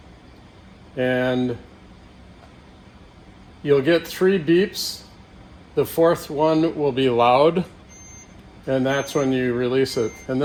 And you'll get 3 beeps. The 4th one will be loud, and that's when you release it. And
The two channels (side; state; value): both; identical; correlation 1.00